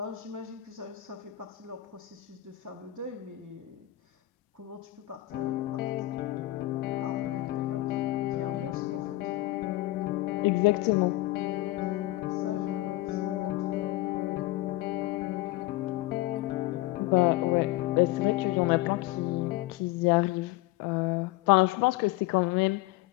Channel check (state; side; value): quieter; right; 17.6 dB